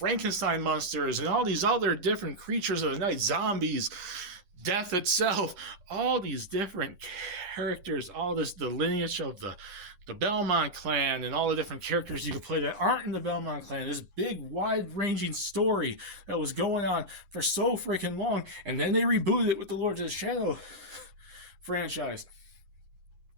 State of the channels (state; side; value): late; left; 11 ms